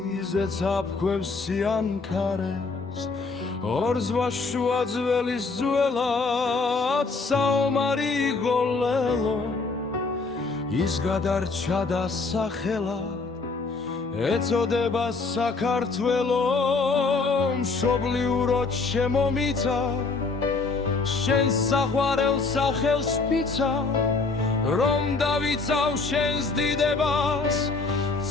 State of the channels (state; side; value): quieter; right; 4.1 dB